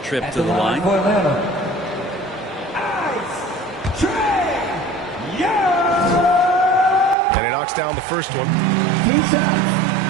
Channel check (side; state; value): left; drops out; at 7.2 s